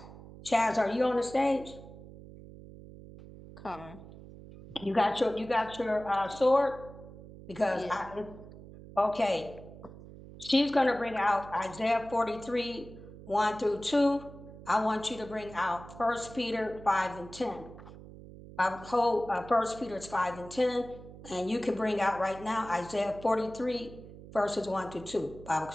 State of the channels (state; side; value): noise; right; hum, 16 dB below the sound